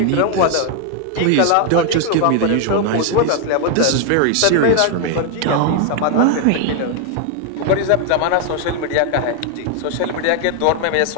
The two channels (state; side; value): different; both; correlation 0.00